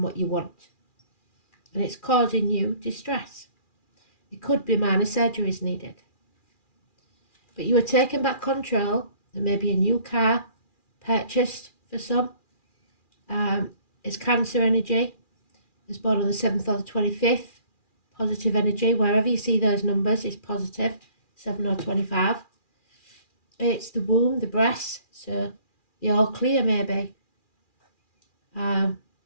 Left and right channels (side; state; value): right; late; 2.4 ms